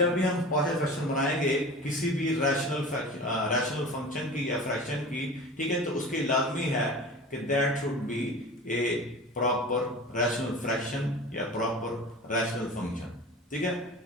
भी हम पार्शियल फ्रैक्शन बनाएंगे किसी भी रैशनल फंक्शन की या फ्रैक्शन की, ठीक है, तो उसके लाजमी है कि that should be A proper rational fraction या प्रॉपर रैशनल फंक्शन, ठीक है।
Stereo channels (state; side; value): normal; both; correlation 0.36